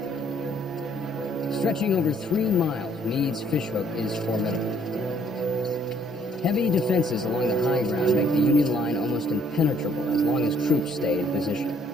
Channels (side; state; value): both; normal; correlation 0.64